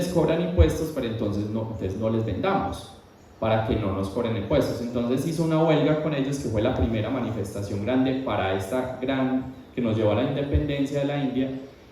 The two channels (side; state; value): both; identical; correlation 1.00